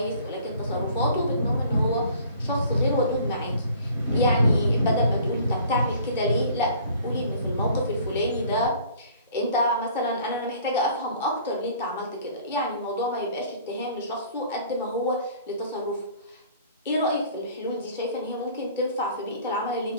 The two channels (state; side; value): inverted; both; correlation -0.51